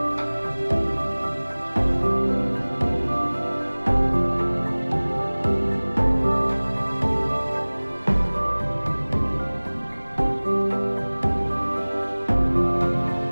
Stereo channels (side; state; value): both; inverted; correlation -1.00